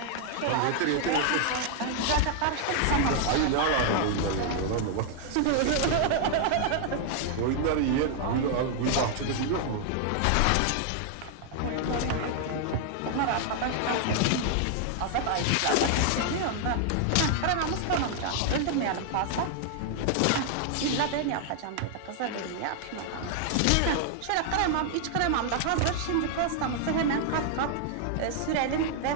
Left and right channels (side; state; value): both; different; correlation 0.00